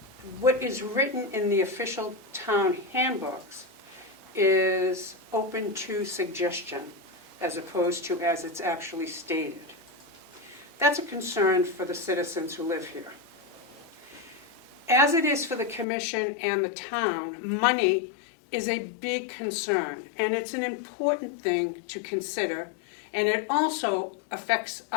what is written in the official town handbooks is open to suggestion as opposed to as it's actually stated. That's a concern for the citizens who live here. As it is for the commission and the town, money is a big concern, and it's an important thing to consider, and it also affects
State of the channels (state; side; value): drops out; right; at 15.9 s